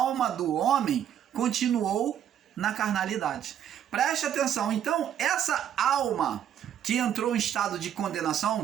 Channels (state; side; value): quieter; left; 9.8 dB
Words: do homem continuou na carnalidade. Preste atenção, então, essa alma que entrou em estado de condenação,